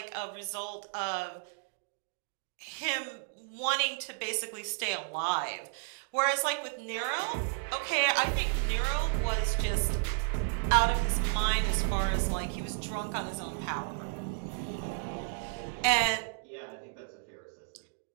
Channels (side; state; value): left; silent; digital silence